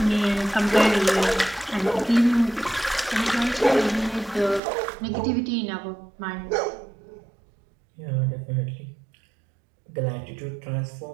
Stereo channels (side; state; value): left; drops out; at 4.6 s